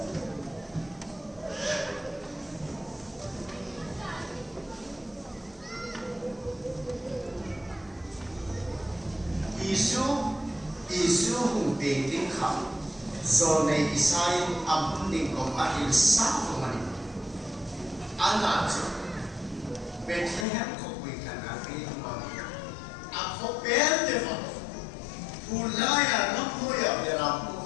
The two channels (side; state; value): right; drops out; at 20.5 s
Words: Isu hung ting kham zo nei isai am ding ko mahil sa ko mani ana chu Bethlehem ko wi kana ri ma a ko bel de fa pulaya no moya bera pu